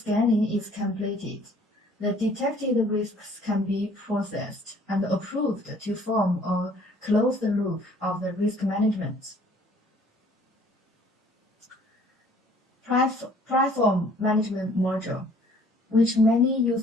is completed, the detected risks can be processed and approved to form a closed loop of the risk management. Platform management module, which many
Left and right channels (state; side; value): normal; both; correlation 0.57